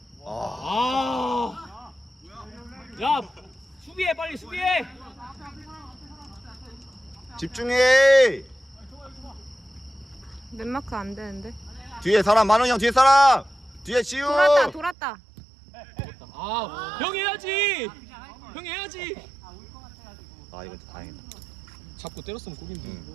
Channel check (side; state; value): left; drops out; at 15.0 s